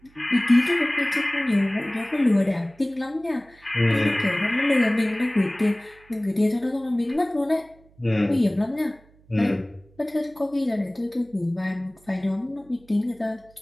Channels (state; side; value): noise; right; hum, 29 dB below the sound